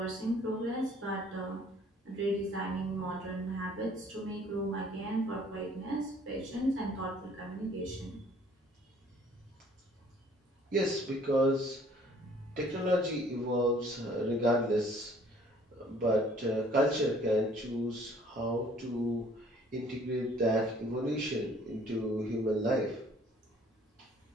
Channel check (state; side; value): normal; both; correlation 0.57